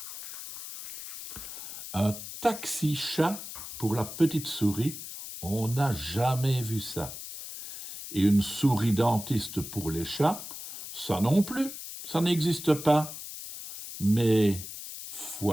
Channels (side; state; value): left; noise; hiss, 10 dB below the sound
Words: Un taxi-chat pour la petite souris, on n'a jamais vu ça. Et une souris dentiste pour les chats, ça non plus, ça n'existe pas. Mais,